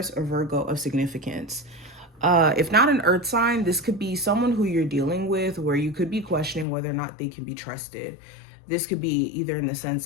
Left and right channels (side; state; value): right; drops out; at 6.7 s